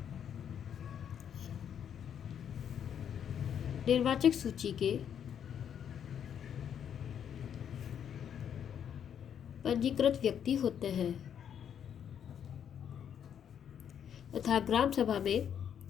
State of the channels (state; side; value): quieter; right; 8.7 dB